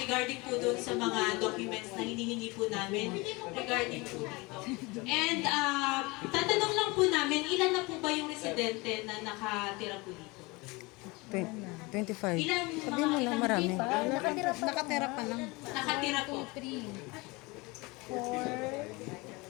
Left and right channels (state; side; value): quieter; right; 24.8 dB